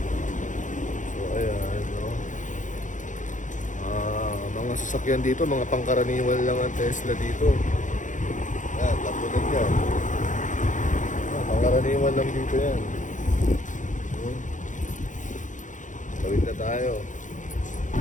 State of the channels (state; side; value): late; right; 0.37 ms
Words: So ayan. No? Mga sasakyan dito, mga pangkaraniwan lang ang Tesla dito. Yan, tapos yan. Pangkaraniwan lang dito yan. Tawid na tayo.